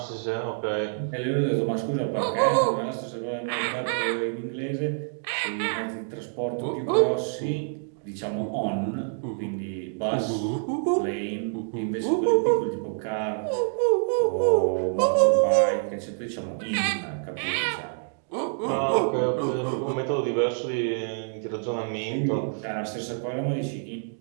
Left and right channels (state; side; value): silent; left; digital silence